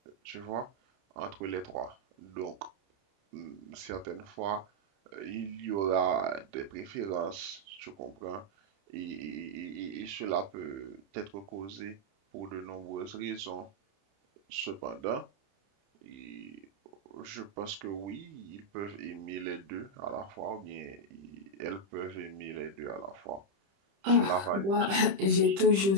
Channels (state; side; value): late; left; 30 ms